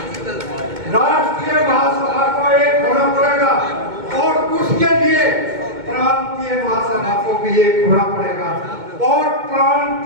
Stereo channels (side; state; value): left; late; 2.2 ms